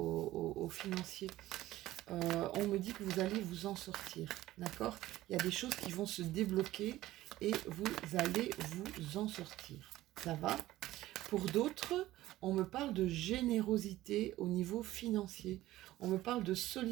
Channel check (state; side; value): quieter; left; 15.8 dB